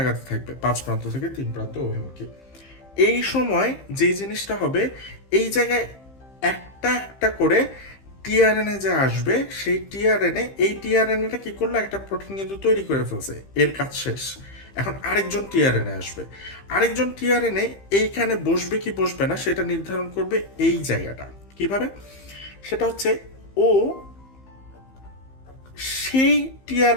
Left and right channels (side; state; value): right; late; 15 ms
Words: আগাতে থাকবে 5 প্রান্ত থেকে 3 প্রান্ত অভিমুখী। এই সময় যে জিনিসটা হবে, এই জায়গায় একটা একটা করে টিআরএনএ যে আসবে, সেই টিআরএনএ, এই টিআরএনএটা কি করলো, একটা প্রোটিন কিন্তু তৈরি করে ফেলছে, এর কাজ শেষ। এখন আরেকজন টিআরএনএ আসবে, আরেকজন টিআরএনএ এইখানে বসবে কি বসবে না সেটা নির্ধারণ করবে এই জায়গাটা। কিভাবে, সেটা হচ্ছে ও সেই